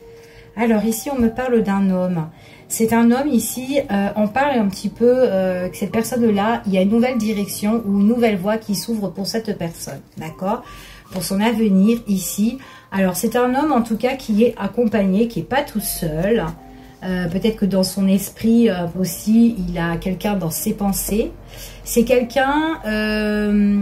Alors ici, on me parle d'un homme. C'est un homme ici, on parle un petit peu que cette personne-là, il y a une nouvelle direction ou une nouvelle voie qui s'ouvre pour cette personne, d'accord? Pour son avenir ici. Alors, c'est un homme en tout cas qui est accompagné, qui n'est pas tout seul. Peut-être que dans son esprit aussi, il a quelqu'un dans ses pensées. C'est quelqu'un...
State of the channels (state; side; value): identical; both; correlation 1.00